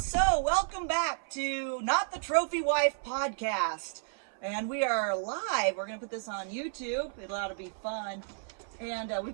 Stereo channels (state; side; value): silent; left; 56 dB below the other